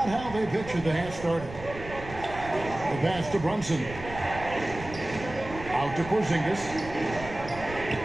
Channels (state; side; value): noise; right; rumble, 13 dB below the sound